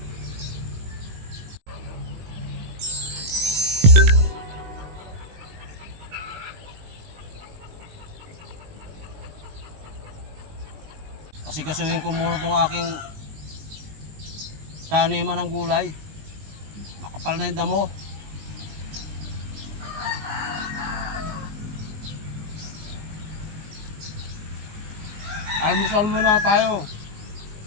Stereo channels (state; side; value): late; left; 19 ms